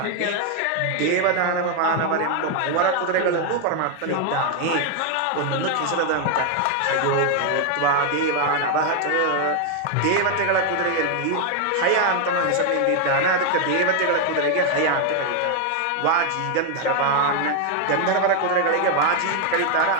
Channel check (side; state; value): both; different; correlation 0.01